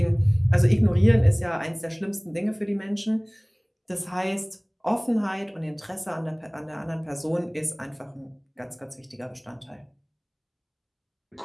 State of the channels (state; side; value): identical; both; correlation 1.00